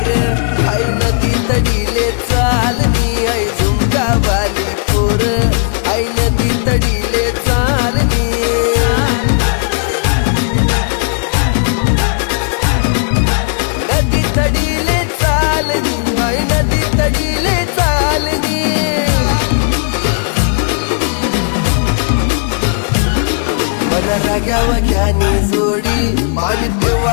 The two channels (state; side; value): silent; right; 65 dB below the other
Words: आई नदी तडीले चालनी आई झुमकावाली पोर आई नदी तडीले चालनी नदी तडीले चालनी आई नदी तडीले चालनी मन राग्यावा घ्यानी जोडी पाणी